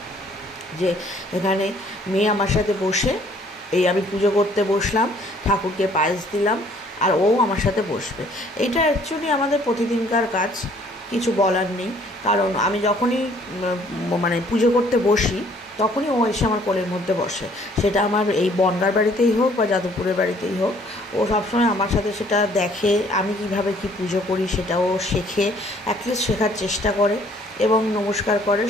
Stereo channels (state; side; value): normal; both; correlation 0.60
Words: যে এখানে মেয়ে আমার সাথে বসে, এই আমি পুজো করতে বসলাম, ঠাকুরকে পায়েস দিলাম, আর ও আমার সাথে বসবে। এইটা অ্যাকচুয়ালি আমাদের প্রতিদিনকার কাজ, কিছু বলার নেই। কারণ আমি যখনই মানে পুজো করতে বসি তখনই ও এসে আমার কোলের মধ্যে বসে। সেটা আমার এই বনগাঁর বাড়িতেই হোক বা যাদবপুরের বাড়িতেই হোক, ও সবসময় আমার সাথে সেটা দেখে, আমি কিভাবে কি পুজো করি সেটাও শেখে, অ্যাটলিস্ট শেখার চেষ্টা করে এবং নমস্কার করে,